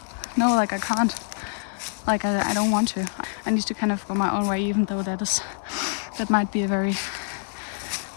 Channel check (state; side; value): silent; right; digital silence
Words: no, like I can't, like I don't want to. I need to kind of go my own way, even though that might be a very